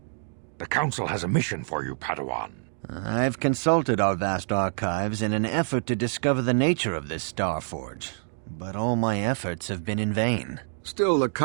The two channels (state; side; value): silent; left; digital silence